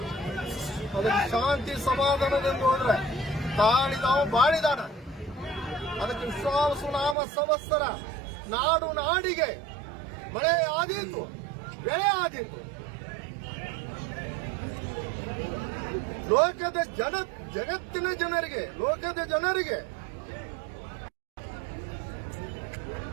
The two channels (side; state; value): left; drops out; at 7.2 s